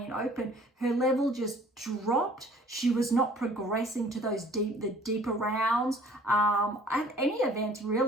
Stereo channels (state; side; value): normal; both; correlation 0.53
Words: Open. Her level just dropped. She was not progressing to those deeper rounds at any event,